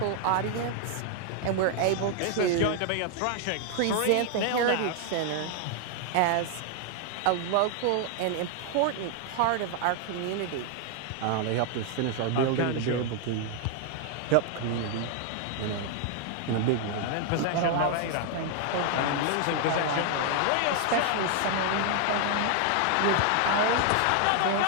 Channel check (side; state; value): both; different; correlation 0.00